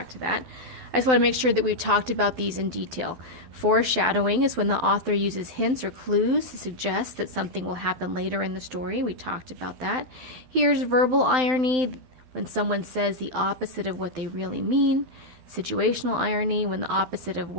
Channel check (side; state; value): left; late; 12 ms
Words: to that. I just want to make sure that we've talked about these in detail. Foreshadowing is when the author uses hints or clues to suggest that something will happen later in the story. We talked about that. Here's verbal irony, when someone says the opposite of what they really mean. Situational irony, when the opposite of